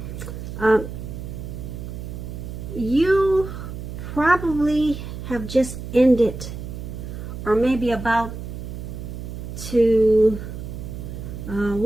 you probably have just ended, or maybe about to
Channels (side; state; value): right; noise; hum, 8 dB below the sound